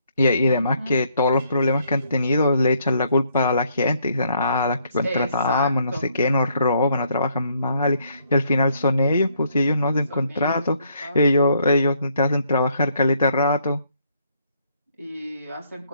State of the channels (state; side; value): inverted; both; correlation -0.70